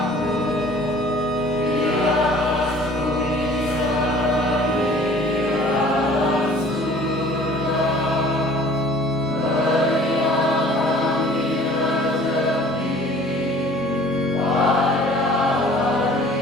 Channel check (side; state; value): both; normal; correlation 0.50